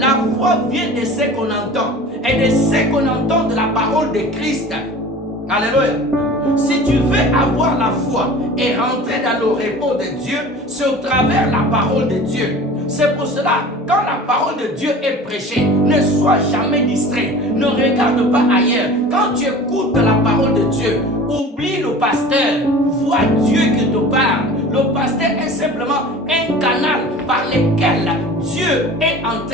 foi vient de ce qu'on entend, et de ce qu'on entend de la parole de Christ. Alléluia. Si tu veux avoir la foi et rentrer dans le repos de Dieu, c'est au travers la parole de Dieu. C'est pour cela, quand la parole de Dieu est prêchée, ne sois jamais distrait. Ne regarde pas ailleurs. Quand tu écoutes la parole de Dieu, oublie le pasteur. Vois Dieu qui te parle. Le pasteur est simplement un canal par lequel Dieu est en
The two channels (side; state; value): both; normal; correlation 0.40